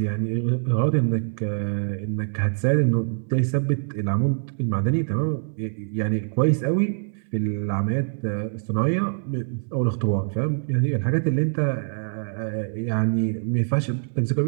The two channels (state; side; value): silent; left; 62 dB below the other